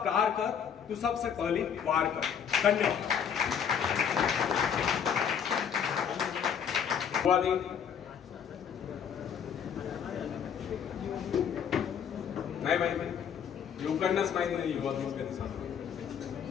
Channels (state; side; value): quieter; right; 7.9 dB